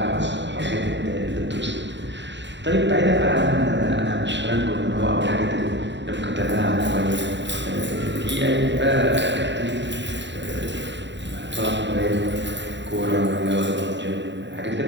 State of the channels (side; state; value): left; late; 0.52 ms